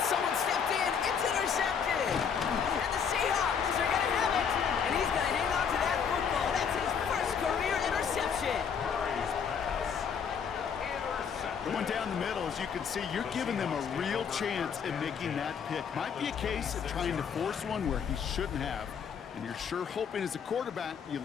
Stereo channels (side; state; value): right; quieter; 7.0 dB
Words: someone stepped in. It's intercepted. And the Seahawks are going to have it. And he's going to hang on to that football. That's his first career interception. Going down the middle, as you can see, you're giving them a real chance at making that pick. Might be a case of trying to force one where he shouldn't have. And you're sure hoping as a quarterback you